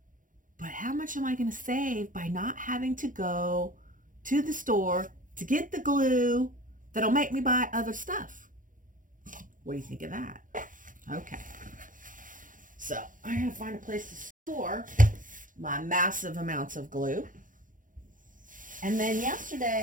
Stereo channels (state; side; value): late; left; 0.39 ms